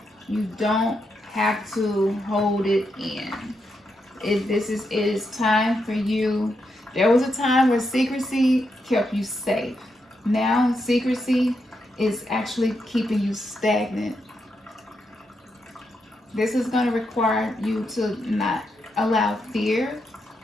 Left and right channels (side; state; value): both; normal; correlation 0.83